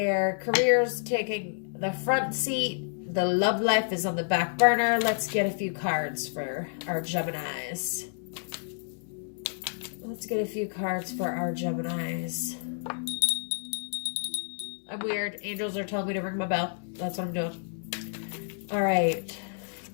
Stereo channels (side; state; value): right; silent; digital silence